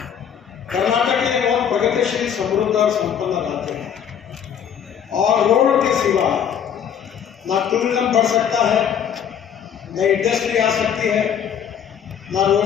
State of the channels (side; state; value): right; quieter; 8.4 dB